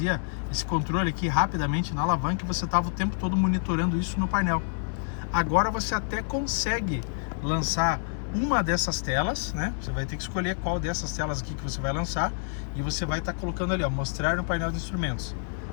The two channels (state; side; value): silent; right; digital silence